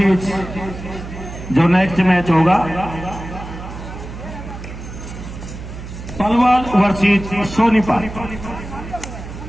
जो नेक्स्ट मैच होगा, पलवल वर्सेस सोनीपत।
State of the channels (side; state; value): right; noise; hum, 11 dB below the sound